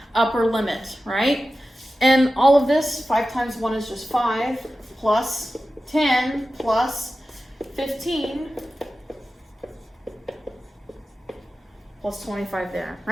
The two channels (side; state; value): both; normal; correlation 0.94